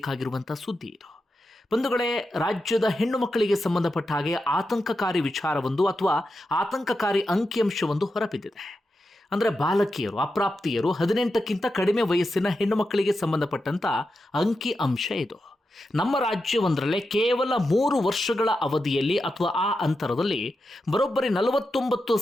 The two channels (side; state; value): both; normal; correlation 0.88